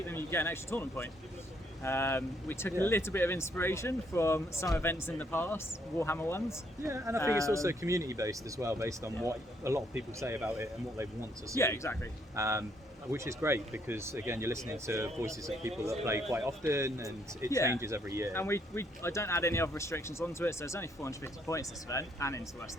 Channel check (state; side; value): normal; both; correlation 0.71